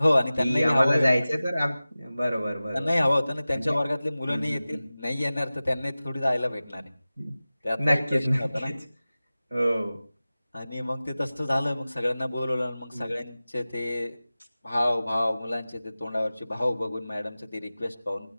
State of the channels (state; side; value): inverted; both; correlation -0.97